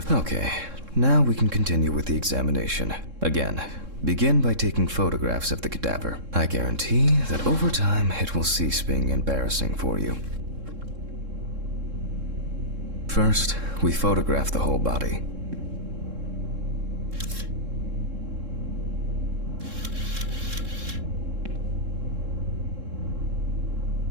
Okay, now we can continue with the examination. Again, begin by taking photographs of the cadaver. I guarantee that over time it will cease being embarrassing for you. First, we photograph the whole body.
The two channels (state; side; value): late; left; 3.7 ms